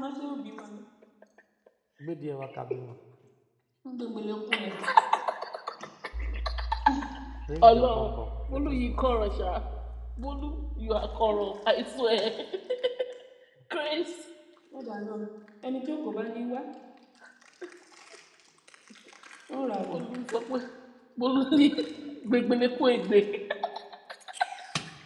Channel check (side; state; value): both; identical; correlation 1.00